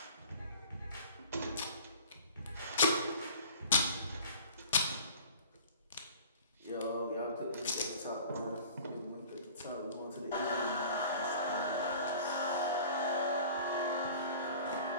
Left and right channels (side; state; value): both; inverted; correlation -0.45